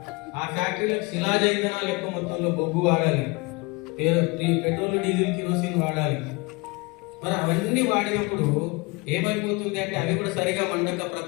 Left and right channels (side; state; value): right; quieter; 26.6 dB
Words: ఆ ఫ్యాక్టరీలకు శిలాజ ఇంధనాలు ఎక్కువ మొత్తంలో బొగ్గు వాడాలి, పెట్రోల్, డీజిల్, కిరోసిన్ వాడాలి. మరి అవన్నీ వాడినప్పుడు ఏమైపోతుంది అంటే అవి కూడా సరిగా మండక